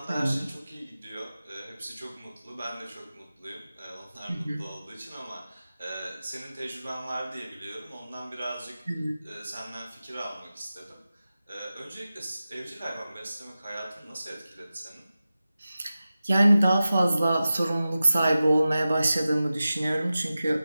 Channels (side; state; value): both; inverted; correlation -0.94